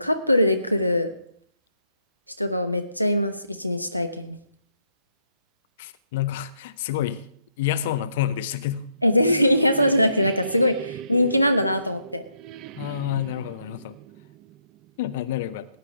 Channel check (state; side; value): inverted; both; correlation -0.75